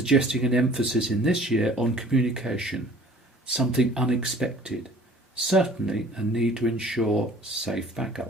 an emphasis in this year on communication, something unexpected, certainly a need to ensure safe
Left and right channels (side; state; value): both; normal; correlation 0.50